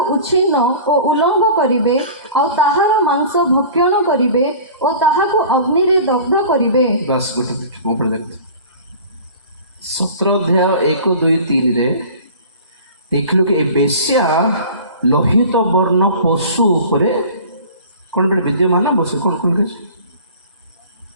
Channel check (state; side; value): inverted; both; correlation -0.42